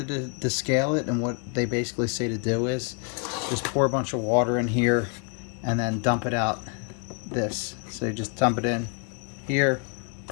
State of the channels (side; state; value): right; quieter; 38.8 dB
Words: to descale it, and what they basically say to do is just pour a bunch of water in here and then dump it out this. So you just dump it in here,